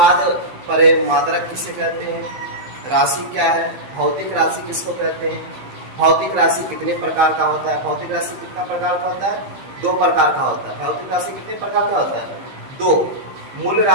परे मात्रक किसे कहते हैं, राशि क्या है, भौतिक राशि किसको कहते हैं, भौतिक राशि कितने प्रकार का होता है, भौतिक राशि कितना प्रकार का होता है, 2 प्रकार का होता है। भौतिक राशि कितने प्रकार का होता है, 2, मूल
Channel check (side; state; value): left; late; 15 ms